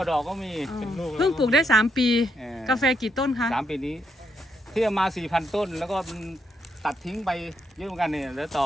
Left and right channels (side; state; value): both; normal; correlation 0.78